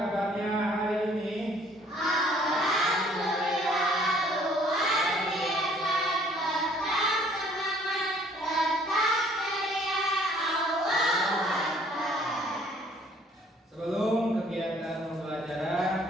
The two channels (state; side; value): normal; both; correlation 0.59